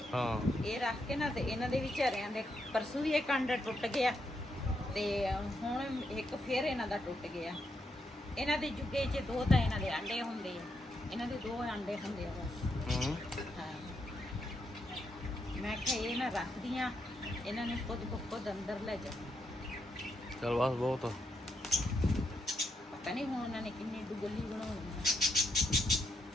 ਹਾਂ ਇਹ ਰੱਖ ਕੇ ਨਾ ਤੇ ਇਹਨਾਂ ਦੇ ਵਿਚਾਰਿਆਂ ਦੇ ਪਰਸੋਂ ਵੀ ਇੱਕ ਅੰਡਾ ਟੁੱਟ ਗਿਆ ਤੇ ਹੁਣ ਇੱਕ ਫੇਰ ਇਹਨਾਂ ਦਾ ਟੁੱਟ ਗਿਆ। ਇਹਨਾਂ ਦੇ ਜੁਗੇ 'ਚ 2 ਤਾਂ ਇਹਨਾਂ ਦੇ ਅੰਡੇ ਹੁੰਦੇ ਆ, ਇਹਨਾਂ ਦੇ 2 ਅੰਡੇ ਹੁੰਦੇ ਆ ਬਸ। ਹੂੰ ਹਾਂ ਮੈਂ ਕਿਹਾ ਇਹ ਨਾ ਰੱਖਦੀਆਂ, ਇਹਨਾਂ ਨੇ ਖੁਦ ਅੰਦਰ ਲੈ ਜਾ। ਚਲ ਬਸ ਬਹੁਤ ਆ। ਪਤਾ ਨਹੀਂ ਹੁਣ ਉਹਨਾਂ ਨੇ ਕਿੰਨੀ ਡੁਗਲੀ ਬਣਾਉਣੀ ਆ।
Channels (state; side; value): normal; both; correlation 0.80